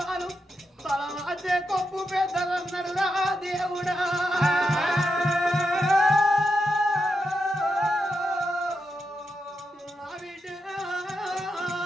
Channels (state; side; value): normal; both; correlation 0.85